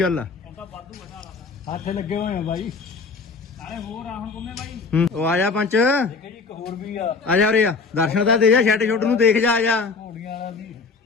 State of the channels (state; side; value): quieter; right; 4.6 dB